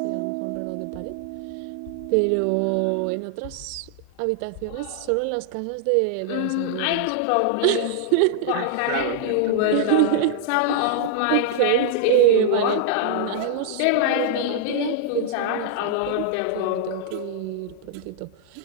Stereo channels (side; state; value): both; different; correlation -0.01